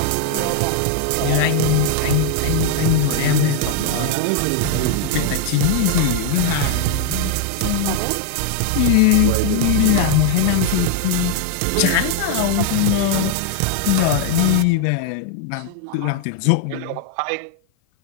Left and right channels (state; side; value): different; both; correlation 0.00